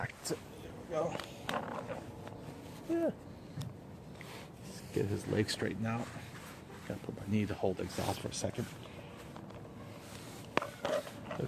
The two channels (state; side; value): identical; both; correlation 1.00